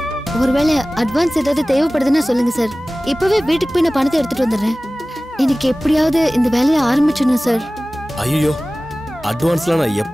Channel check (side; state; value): both; normal; correlation 0.97